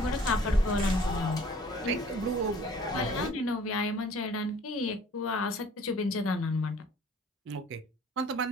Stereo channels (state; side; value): normal; both; correlation 0.53